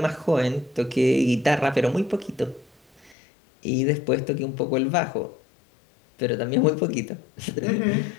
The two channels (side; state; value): right; drops out; at 3.2 s